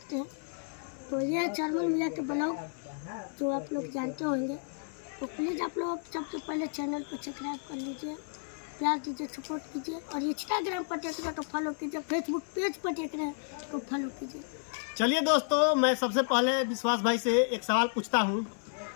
हैं। तो ये है चरमन मियाँ के ब्लॉग, जो आप लोग जानते होंगे। तो प्लीज़ आप लोग सबसे पहले चैनल को सब्सक्राइब कर लीजिए, प्यार दीजिए, सपोर्ट कीजिए, और इंस्टाग्राम पर देख रहे हैं तो फॉलो कीजिए, फेसबुक पेज पर देख रहे हैं तो फॉलो कीजिए। चलिए दोस्तों, मैं सबसे पहले विश्वास भाई से एक सवाल पूछता हूँ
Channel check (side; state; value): right; silent; 56 dB below the other